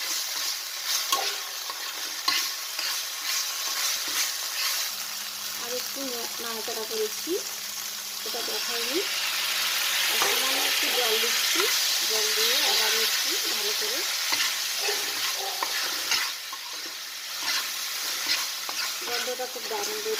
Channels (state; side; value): identical; both; correlation 1.00